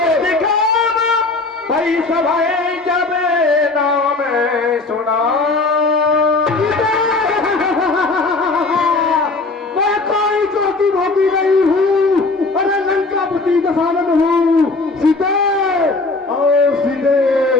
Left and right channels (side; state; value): right; quieter; 3.5 dB